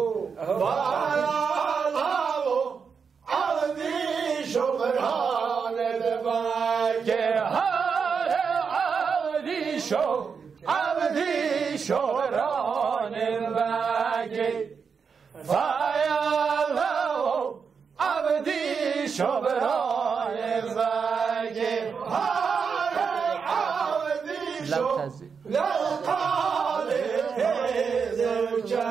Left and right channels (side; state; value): left; quieter; 5.9 dB